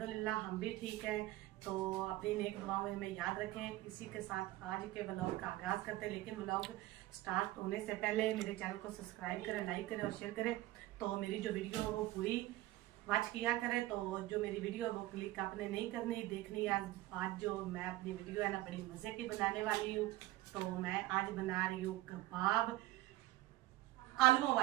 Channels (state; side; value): quieter; left; 17.0 dB